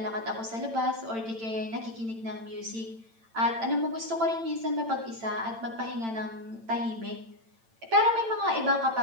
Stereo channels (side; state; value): left; late; 8.9 ms